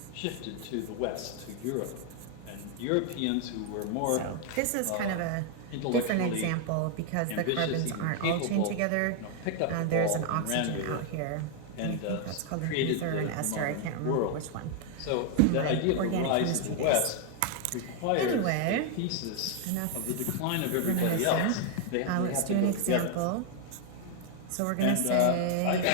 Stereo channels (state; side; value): different; both; correlation 0.00